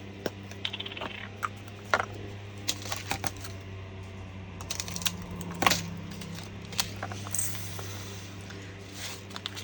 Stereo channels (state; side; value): identical; both; correlation 1.00